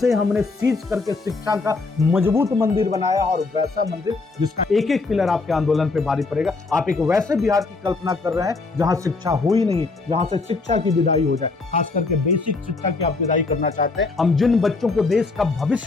हमने सीज करके शिक्षा का मजबूत मंदिर बनाया, और वैसा मंदिर जिसका एक एक पिलर आपके आंदोलन पे भारी पड़ेगा। आप एक वैसे बिहार की कल्पना कर रहे हैं जहां शिक्षा हो ही नहीं, जहां से शिक्षा की विदाई हो जाए, खास करके बेसिक शिक्षा की आप विदाई करना चाहते हैं। हम जिन बच्चों को देश का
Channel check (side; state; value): right; quieter; 3.8 dB